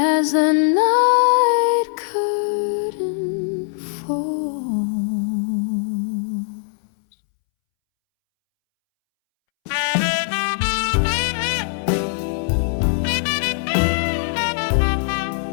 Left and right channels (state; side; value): silent; right; 65 dB below the other